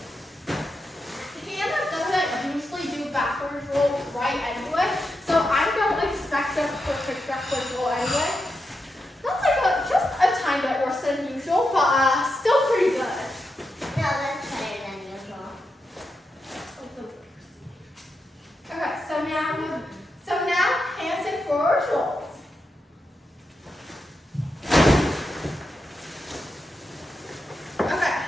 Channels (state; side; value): normal; both; correlation 0.87